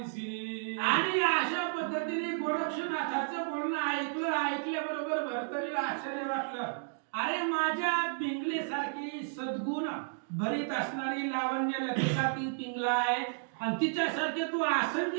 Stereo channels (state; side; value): silent; left; digital silence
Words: आणि अशा पद्धतीने गोरक्षनाथाचं बोलणं ऐकल्याबरोबर भरतरीला आश्चर्य वाटलं. अरे माझ्या पिंगलेसारखी सद्गुण भरीत असणारी लावण्य लतिका ती पिंगला आहे आणि तिच्यासारखे तू